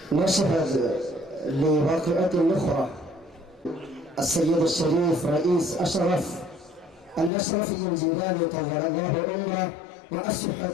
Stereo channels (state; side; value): drops out; right; at 7.3 s